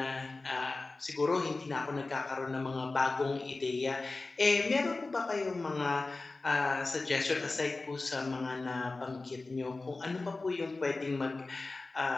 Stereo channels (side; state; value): right; quieter; 3.4 dB